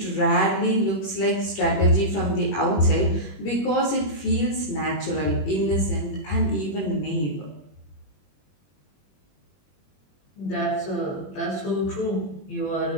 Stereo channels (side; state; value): right; late; 21 ms